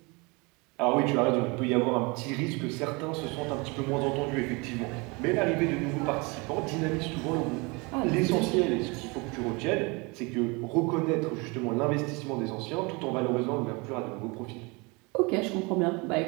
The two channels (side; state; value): left; quieter; 27.8 dB